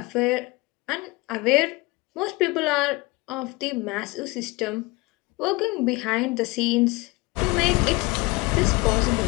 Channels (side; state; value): right; quieter; 24.0 dB